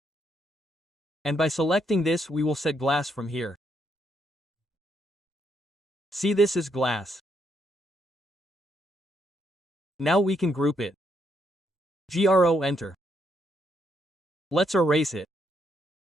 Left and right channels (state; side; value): normal; both; correlation 0.76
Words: And by selecting this we will set glass from here. See this is glass. Now we can group it. GRO enter. Let's erase it.